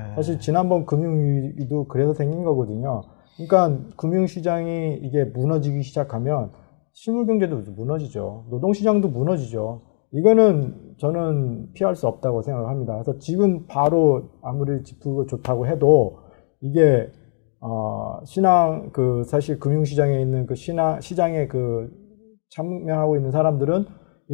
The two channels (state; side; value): silent; right; digital silence